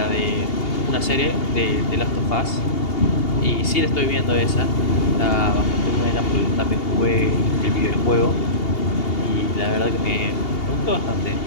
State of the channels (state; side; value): late; right; 2.8 ms